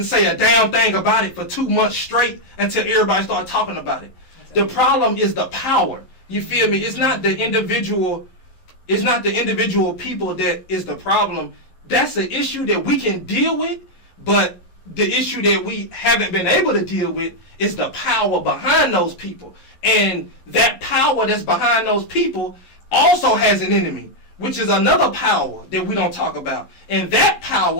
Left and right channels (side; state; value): right; late; 11 ms